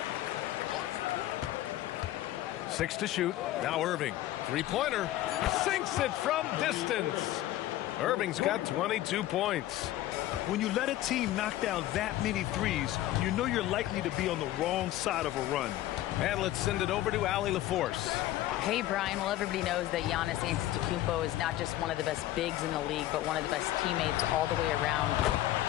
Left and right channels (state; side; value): quieter; right; 14.5 dB